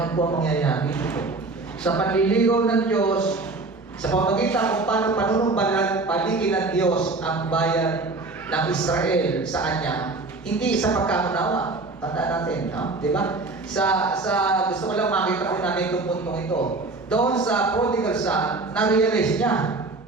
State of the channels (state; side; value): quieter; left; 3.5 dB